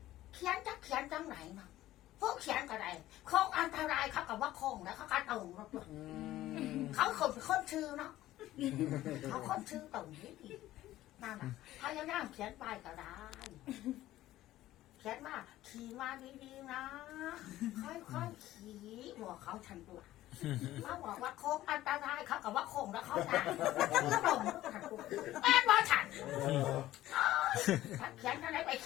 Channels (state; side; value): quieter; right; 14.9 dB